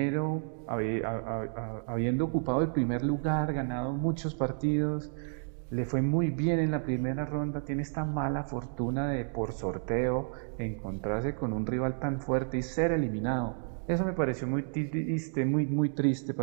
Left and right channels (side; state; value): left; silent; 57 dB below the other